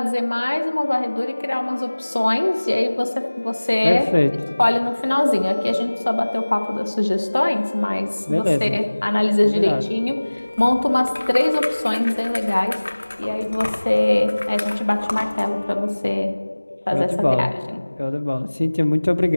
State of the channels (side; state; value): both; inverted; correlation -1.00